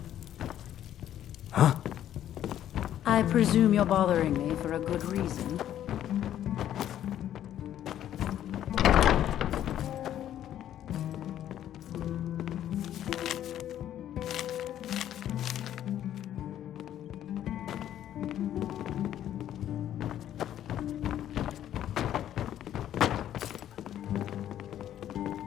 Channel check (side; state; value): right; quieter; 11.3 dB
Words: Huh? I presume you're bothering me for a good reason.